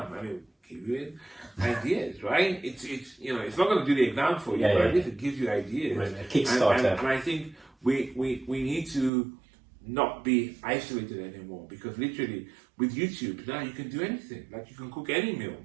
I mean, give you ideas, right? It's you know, it's not going to do the exam for you, but at least it gives you ideas. Right, a Kickstarter. And I think we need to not be isolated anymore, because literally with YouTube now you can do anything. Like you can cook any meal.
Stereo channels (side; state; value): left; drops out; at 9.1 s